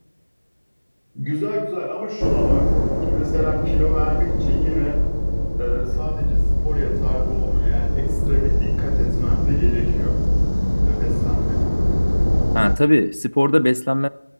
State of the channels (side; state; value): both; inverted; correlation -1.00